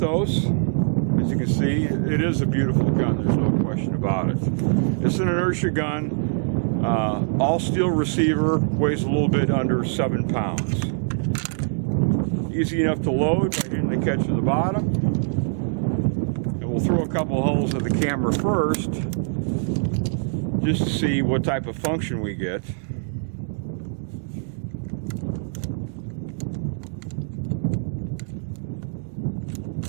As you can see, it is a beautiful gun, there's no question about it. It's an inertia gun, all steel receiver, weighs a little bit under 7 pounds. Easy enough to load by hitting the catch at the bottom. And we'll throw a couple holes at the camera first, just to see what type of function we get.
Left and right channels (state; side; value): silent; left; digital silence